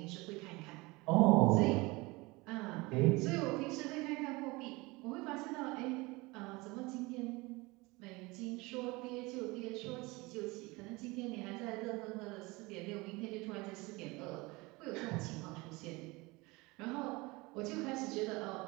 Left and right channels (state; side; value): quieter; left; 23.7 dB